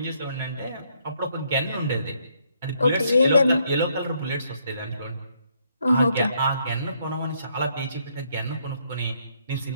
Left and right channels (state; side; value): inverted; both; correlation -0.71